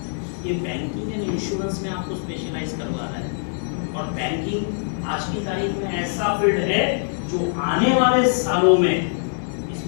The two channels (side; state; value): right; silent; digital silence